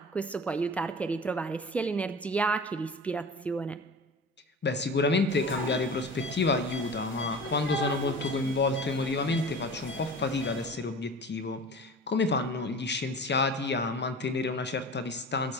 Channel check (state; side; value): normal; both; correlation 0.37